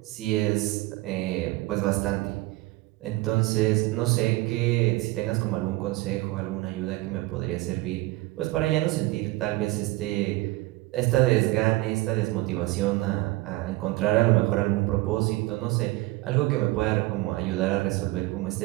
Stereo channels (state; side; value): quieter; left; 20.0 dB